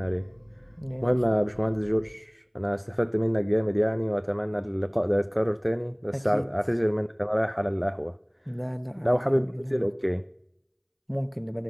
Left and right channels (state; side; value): identical; both; correlation 1.00